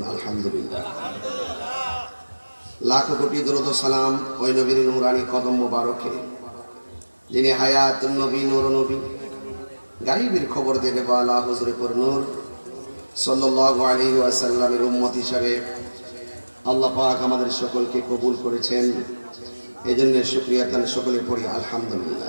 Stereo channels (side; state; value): both; inverted; correlation -1.00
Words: আলহামদুলিল্লাহ লাখো কোটি দরুদ ও সালাম ওই নবীর নূরানি কদম মোবারকে যিনি হায়াতুন নবী নূর নবী গায়বের খবর দেনে ওয়ালা হুজুরে নূর সাল্লাল্লাহু আলাইহি ওয়াসাল্লামের উম্মত হিসেবে আল্লাহ পাক আমাদের সকলকে কবুল করেছেন এজন্য শুকরিয়া তান সকলে পড়ি